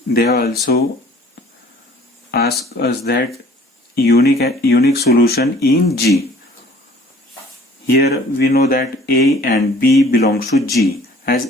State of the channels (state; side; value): normal; both; correlation 0.52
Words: They also ask us that unique solution in G. Here we know that A and B belongs to G.